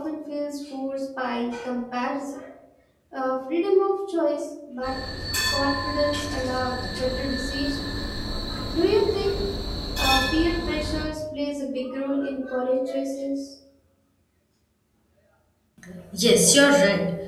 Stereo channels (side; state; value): both; identical; correlation 1.00